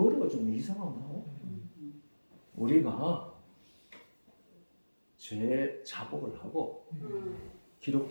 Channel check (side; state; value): both; inverted; correlation -1.00